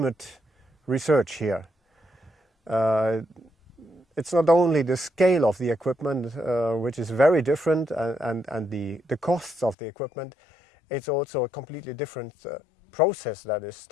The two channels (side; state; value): right; drops out; at 9.8 s